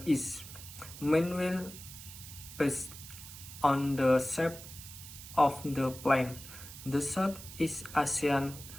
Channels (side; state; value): right; noise; hiss, 14 dB below the sound